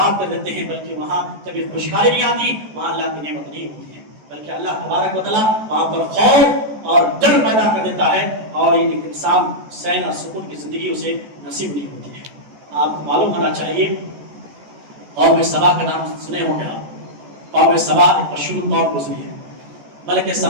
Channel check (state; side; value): late; left; 14 ms